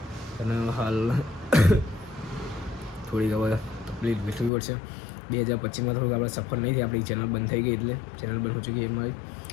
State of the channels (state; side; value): drops out; right; at 4.5 s